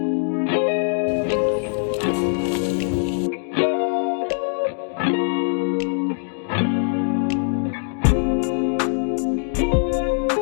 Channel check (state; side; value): silent; right; 64 dB below the other